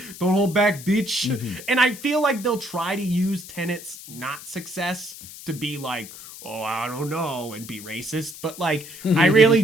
Don't hold back, bitch. Mm-hmm. And I feel like they'll try to use Tenet's not success to be like, oh, I don't know, and be racist. But like, I really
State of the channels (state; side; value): noise; left; hiss, 15 dB below the sound